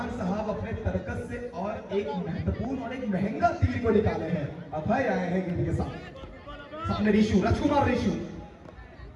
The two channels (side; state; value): both; identical; correlation 1.00